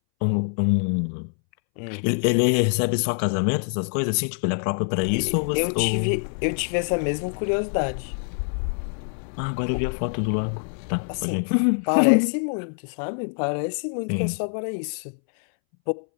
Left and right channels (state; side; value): silent; right; 62 dB below the other